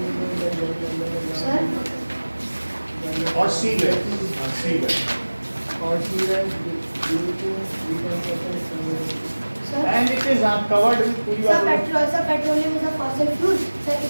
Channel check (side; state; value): both; inverted; correlation -1.00